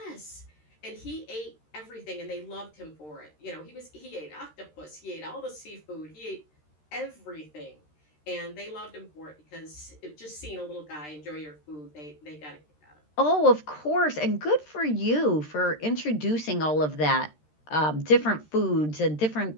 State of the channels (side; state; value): right; late; 13 ms